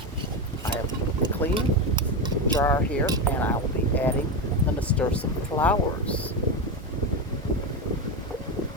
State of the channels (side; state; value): both; normal; correlation 0.14